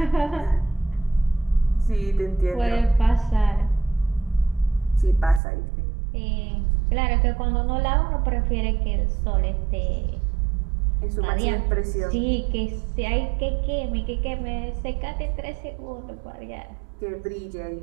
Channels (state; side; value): drops out; left; at 5.4 s